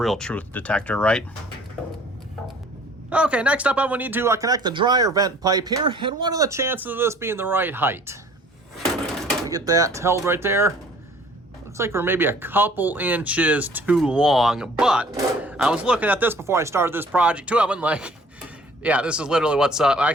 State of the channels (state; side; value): normal; both; correlation 0.53